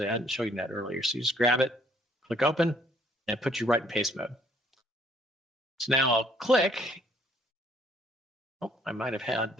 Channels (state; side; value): normal; both; correlation 0.63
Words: hadn't shown you that earlier. So you just grab it, click Open, and it puts you right in paste mode. So now I'll click. Oh, I might have had,